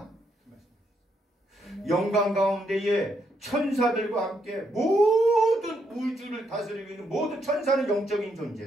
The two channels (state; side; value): normal; both; correlation 0.77